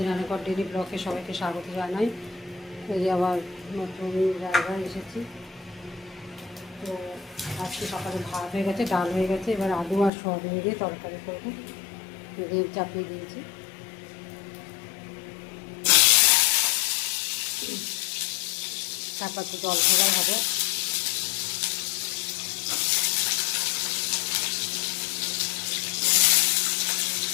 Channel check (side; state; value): right; drops out; at 10.1 s